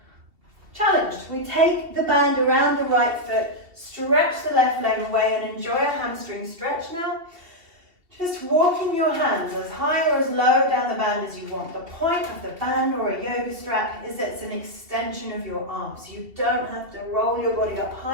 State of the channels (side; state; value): left; late; 2.7 ms